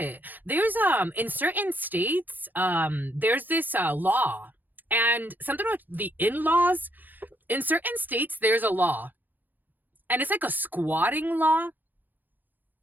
There's, in certain states, there's this law, and something about the in-laws. In certain states, there's a law, and it's like a squatting law.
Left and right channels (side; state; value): left; late; 0.087 ms